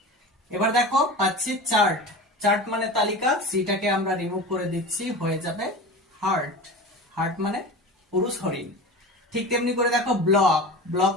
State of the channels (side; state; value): both; normal; correlation 0.31